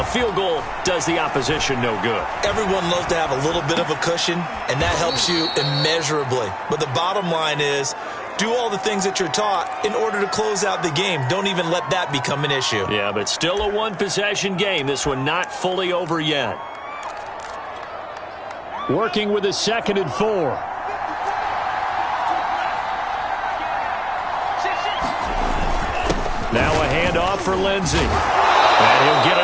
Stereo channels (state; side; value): identical; both; correlation 1.00